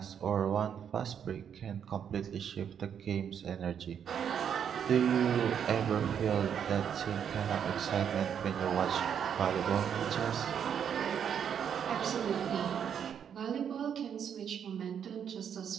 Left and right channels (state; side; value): quieter; left; 8.2 dB